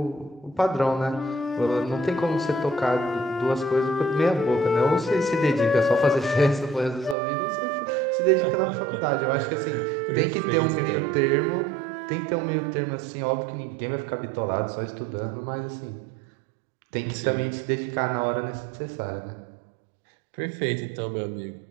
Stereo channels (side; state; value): left; drops out; at 7.2 s